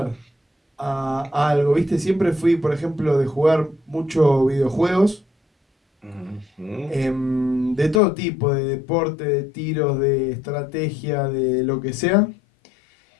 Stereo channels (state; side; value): drops out; right; at 8.0 s